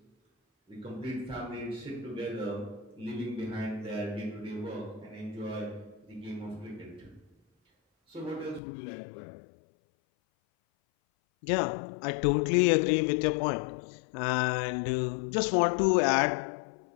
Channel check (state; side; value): drops out; right; at 8.6 s